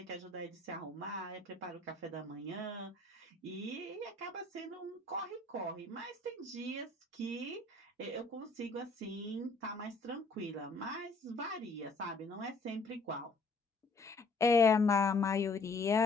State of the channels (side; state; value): right; quieter; 3.4 dB